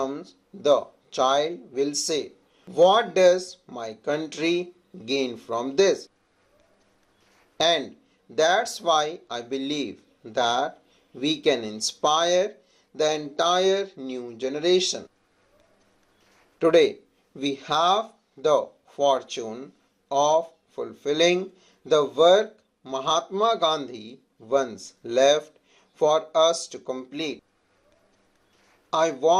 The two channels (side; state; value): both; identical; correlation 1.00